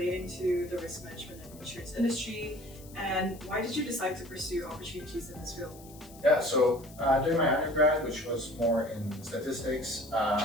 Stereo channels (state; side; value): noise; left; hiss, 21 dB below the sound